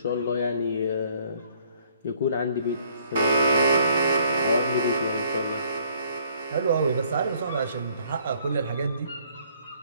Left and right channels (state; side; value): inverted; both; correlation -0.62